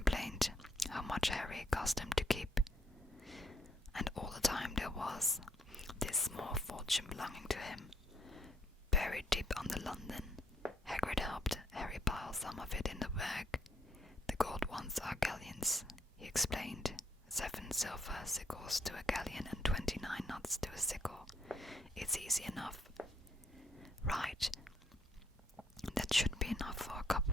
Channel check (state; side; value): normal; both; correlation 0.71